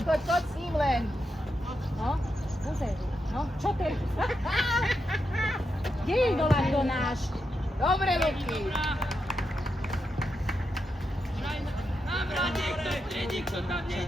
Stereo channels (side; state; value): both; normal; correlation 0.85